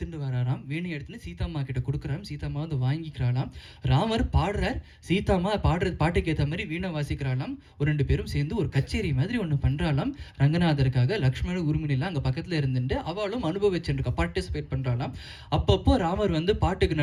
வராராம். வீணை எடுத்துட்டு சீதாம்மா கிட்ட கொடுக்குறாம். சீதாம்மா வந்து வாங்கிக்கிறாளாம். ராமர் பாடுறார், சீதாம்மா பாட்டுக்கு ஏற்ற மாதிரி வீணை வாசிக்கிறாளாம். ஒரு 2 பேரும் சேர்ந்து ஒரு கச்சேரி மாதிரி ஒன்று பண்ணுறாளாம் ரங்கநாதருக்காக. லக்ஷ்மணர் உரிமையெல்லாம் அங்கே பக்கத்தில் இருந்துட்டு அவளும் அனுபவிச்சுருக்கா, பார்ட்டிசிபேட் பண்ணுறாளாம். அப்பப்போ ராமர் வந்து பாட்டுக்கு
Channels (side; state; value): both; identical; correlation 1.00